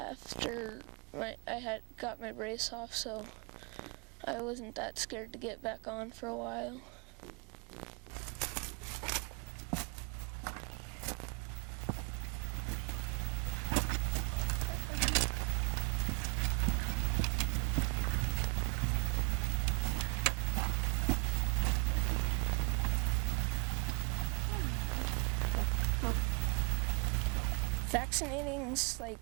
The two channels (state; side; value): quieter; left; 38.6 dB